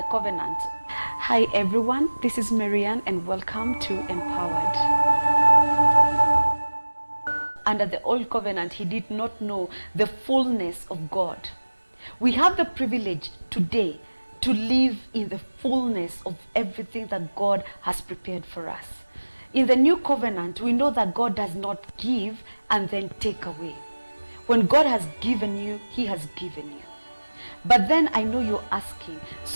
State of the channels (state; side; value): inverted; both; correlation -1.00